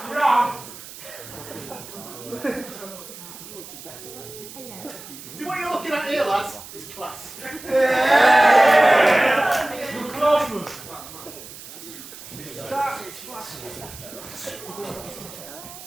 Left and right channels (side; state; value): right; noise; hiss, 15 dB below the sound